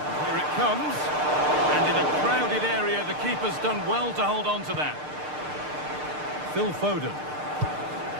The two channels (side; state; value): left; late; 6.6 ms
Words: Comes, and in a crowded area the keeper's done well to hold on to that. Phil Foden.